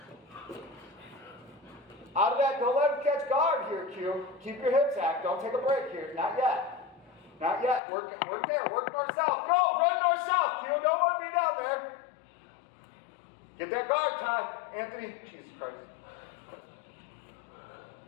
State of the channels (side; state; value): right; drops out; at 7.8 s